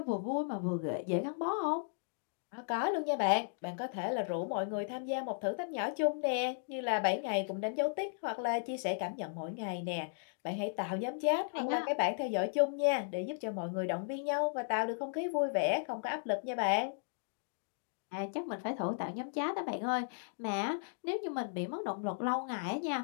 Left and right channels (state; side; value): silent; right; digital silence